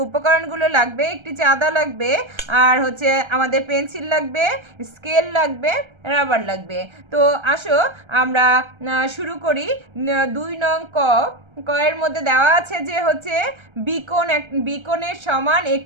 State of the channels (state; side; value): late; left; 1.3 ms